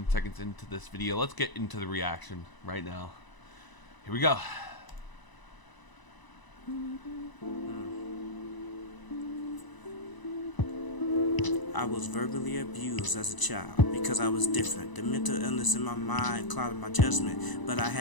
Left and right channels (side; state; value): right; late; 1.0 ms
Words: seconds into this video. Let's get into the reaction right now. Here we go. I was verbally abused as a child because I was different. The mental illness in my mind clouded my judgment, but I